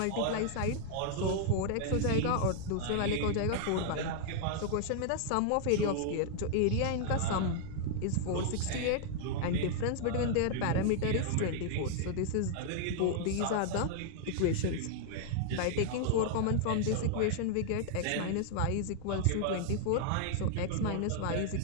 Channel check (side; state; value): both; different; correlation 0.00